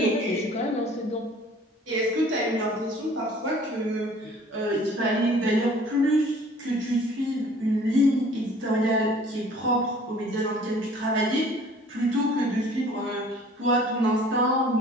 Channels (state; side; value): normal; both; correlation 0.51